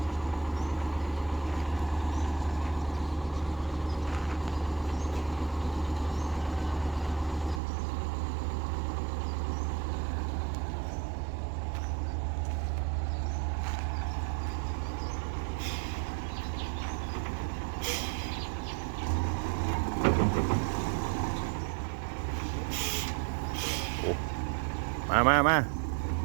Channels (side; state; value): left; drops out; at 7.6 s